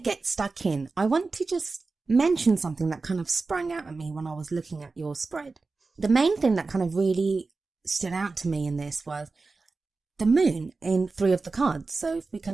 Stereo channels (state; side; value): quieter; left; 3.9 dB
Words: get stuck in, I want to just mention something that kind of sprang out at me when I was looking at your spread. The main thing that kind of really stood out to me in this was the moon in 3 of the cards. So if we